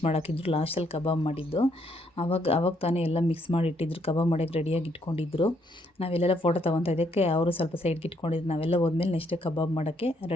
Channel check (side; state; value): both; normal; correlation 0.72